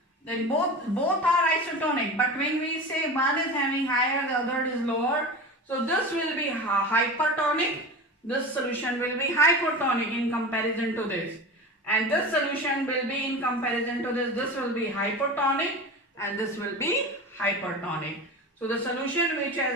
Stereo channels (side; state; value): both; normal; correlation 0.30